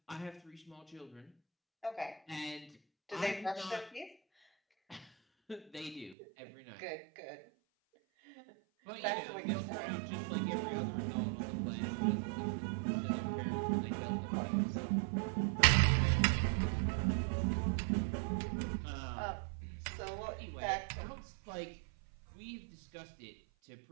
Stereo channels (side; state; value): left; drops out; at 6.2 s